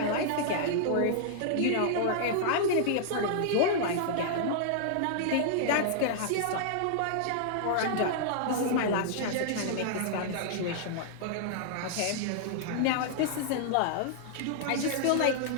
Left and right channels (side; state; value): both; different; correlation -0.01